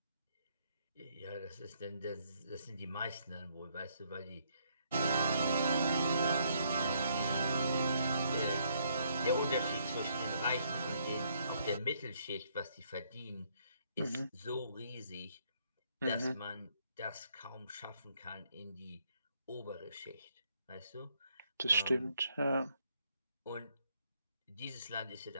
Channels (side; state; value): both; inverted; correlation -0.70